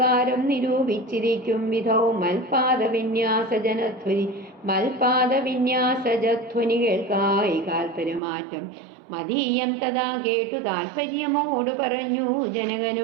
നിരൂപിച്ചിരിക്കും വിധൗ മൽപാദവിന്യാസജധ്വനി കേൾക്കായി കാൽപര്യമാറ്റം മതീയം തഥാ കേട്ടു താൽപര്യമോട് പറഞ്ഞു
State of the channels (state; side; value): drops out; left; at 8.2 s